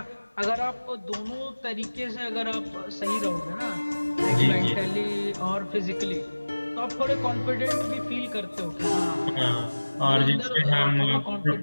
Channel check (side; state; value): both; inverted; correlation -1.00